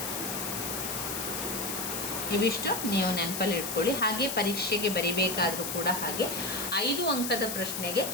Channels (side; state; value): left; noise; hiss, 4 dB below the sound